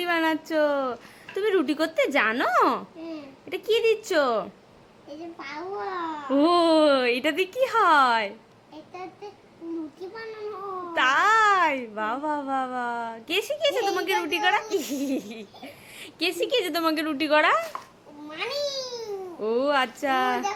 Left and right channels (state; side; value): identical; both; correlation 1.00